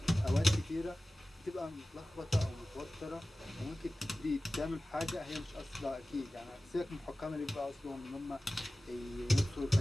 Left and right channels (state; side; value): normal; both; correlation 0.96